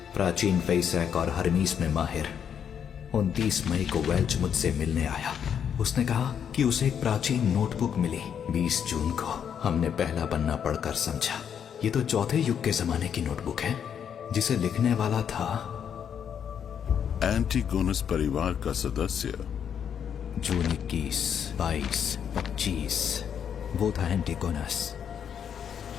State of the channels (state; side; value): quieter; right; 8.2 dB